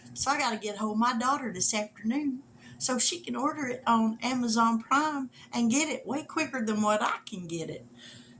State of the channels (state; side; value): identical; both; correlation 1.00